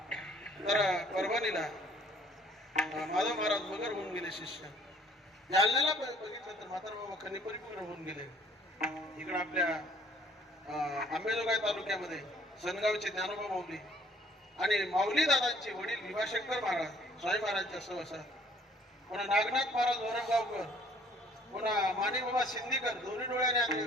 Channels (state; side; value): normal; both; correlation 0.58